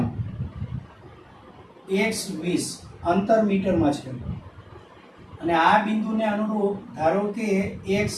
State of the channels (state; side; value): identical; both; correlation 1.00